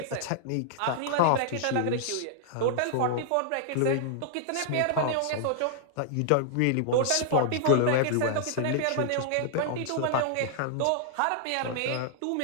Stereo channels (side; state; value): both; different; correlation -0.01